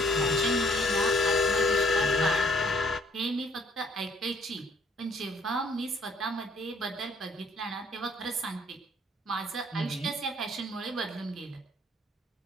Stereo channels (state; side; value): normal; both; correlation 0.63